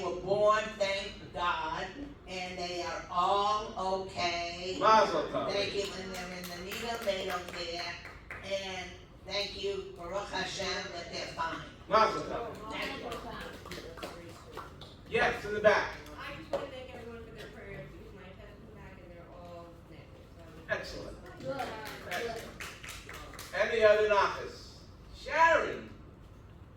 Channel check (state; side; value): identical; both; correlation 1.00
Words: were born, thank God, and they are all okay. Mazel tov. Thank you, when they're in the needle, they don't care. And thank you, Baruch Hashem, that they're fine. Mazel tov. Thank you. Yes, in the back. I just want to thank everyone for their prayers because my test is back and they're all negative. Excellent. Good. Good. Any other nachas? Sharon.